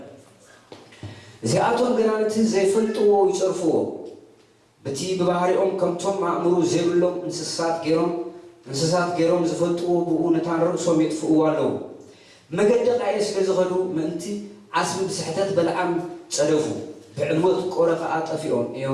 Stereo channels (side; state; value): both; identical; correlation 1.00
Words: زياتهم جنانت ዘይፈልጥዎ ይጽርፍዎ በቲ በባህሪኦም ከምቶም ማእምሩ ዘይብሎም እንስሳት ገይሮም ዝፈልጥዎ ብኡነታን ርእሶም የጥፍእዎ ኣለዉ መገዲ ቃየስ ስለዝኸዱ ምእንቲ ዓስቢ ብስሕተት በልዓም ጸደፉ ብዕልወት ቆረኸ ኣጠፊኦም